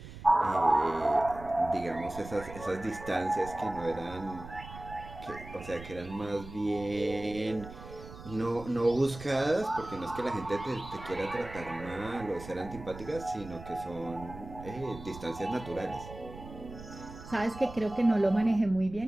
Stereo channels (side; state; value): right; noise; rumble, 14 dB below the sound